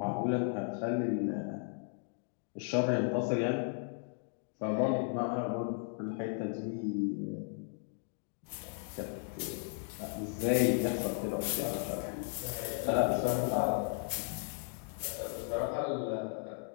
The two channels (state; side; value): silent; right; 54 dB below the other